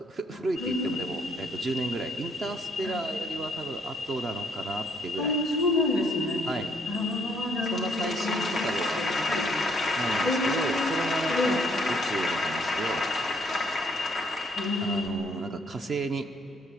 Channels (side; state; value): both; normal; correlation 0.67